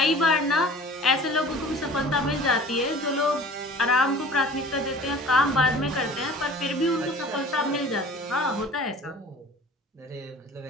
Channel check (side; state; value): both; normal; correlation 0.45